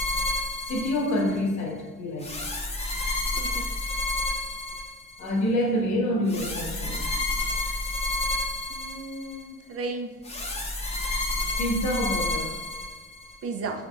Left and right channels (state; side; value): normal; both; correlation 0.35